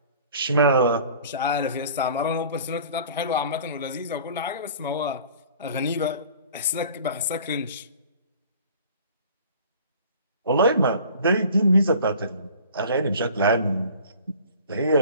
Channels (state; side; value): inverted; both; correlation -0.46